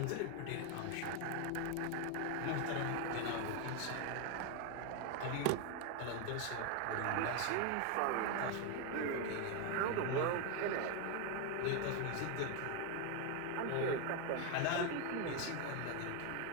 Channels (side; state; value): both; different; correlation 0.01